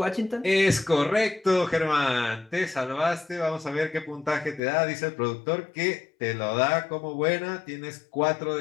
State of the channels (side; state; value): right; drops out; at 4.6 s